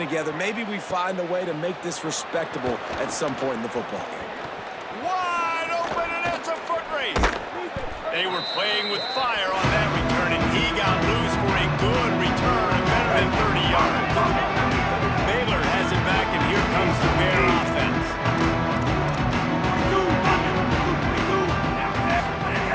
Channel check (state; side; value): identical; both; correlation 1.00